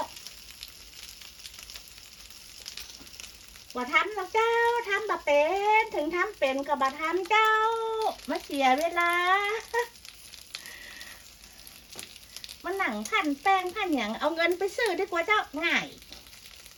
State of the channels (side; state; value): both; identical; correlation 1.00